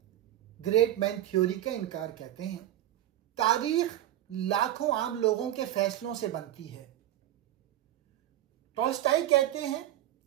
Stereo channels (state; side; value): quieter; left; 13.2 dB